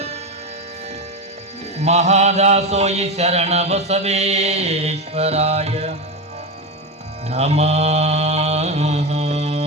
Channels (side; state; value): both; normal; correlation 0.16